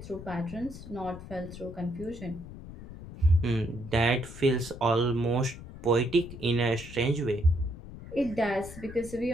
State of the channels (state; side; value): noise; left; rumble, 13 dB below the sound